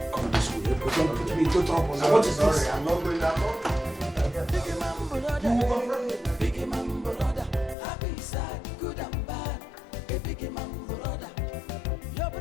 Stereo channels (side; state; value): right; drops out; at 7.8 s